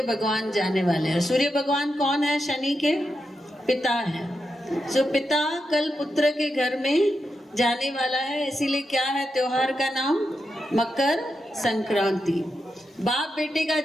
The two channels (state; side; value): normal; both; correlation 0.86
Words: भगवान जाने वाले हैं। सूर्य भगवान कौन है? शनि के पिता हैं। जो पिता कल पुत्र के घर में जाने वाला है, इसीलिए क्या है त्योहार का नाम? मकर संक्रांति। बाप बेटे का